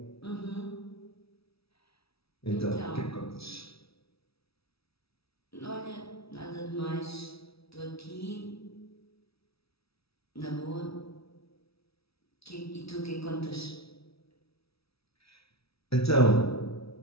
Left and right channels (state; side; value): late; right; 0.76 ms